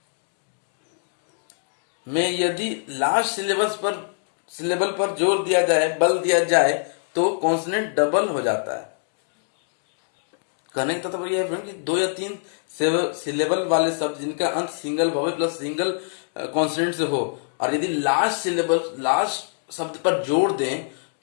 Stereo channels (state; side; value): silent; right; digital silence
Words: में यदि लास्ट सिलेबल पर जोर दिया जाए, बल दिया जाए तो कॉन्सोनेंट डबल हो जाता है। कहने का तात्पर्य यह है कि 2 या 3 सिलेबल वाले शब्द जिनका अंत single vowel plus single consonant से हो और यदि लास्ट शब्द पर जोड़ दें